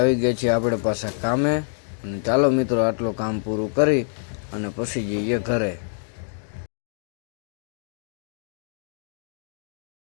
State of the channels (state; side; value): silent; right; digital silence